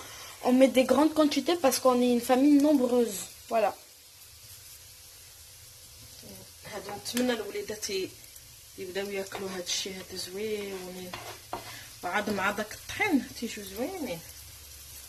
on met des grandes quantités parce qu'on est une famille nombreuse. Voilà. هذا نتمنى الوليدات يبداو ياكلوا هذا الشيء هذا زوين وعاد مع داك الطحين تيجيو زوينين.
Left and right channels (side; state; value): both; identical; correlation 1.00